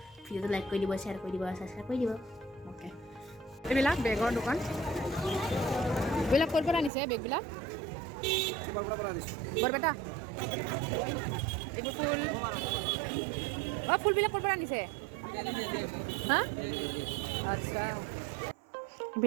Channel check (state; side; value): drops out; left; at 6.9 s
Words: ভিডিঅ'টো লাইক কৰি দিব, শ্বেয়াৰ কৰি দিব, ছাবস্ক্ৰাইব কৰি দিব। অ'কে। এইবিলাক বেগৰ দোকান। এইবিলাক ক'ৰ পৰা আনিছে বেগবিলাক? বৰপেটা। এইবোৰ ফুল। অঁ, ফুলবিলাক ক'ৰ পৰা আনিছে? হা? আচ্ছা।